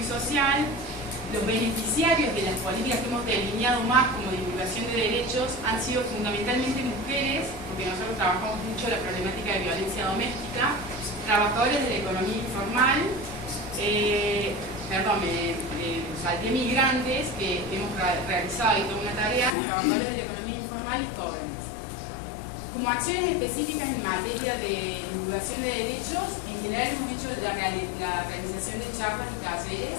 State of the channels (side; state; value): right; drops out; at 19.6 s